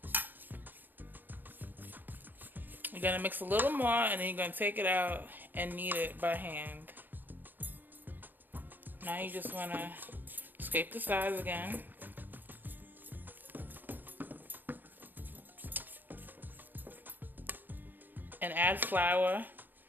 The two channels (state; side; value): late; left; 0.089 ms